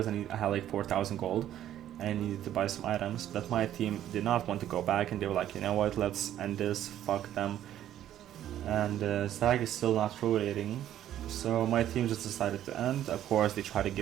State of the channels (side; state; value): left; quieter; 11.7 dB